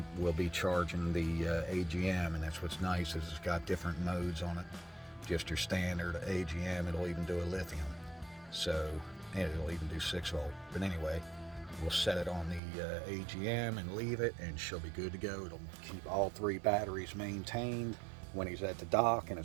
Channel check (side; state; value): left; drops out; at 12.6 s